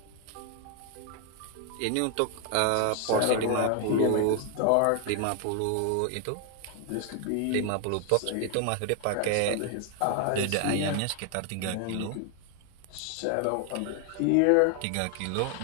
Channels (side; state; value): both; different; correlation 0.01